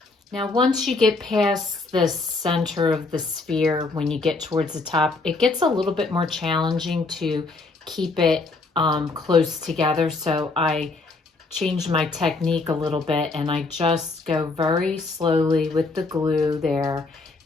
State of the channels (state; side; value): quieter; right; 3.7 dB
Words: Now, once you get past the center of the sphere, when you get towards the top, it gets a little bit more challenging to keep it close together. So I changed my technique a little bit, and I just go very slowly with the glue there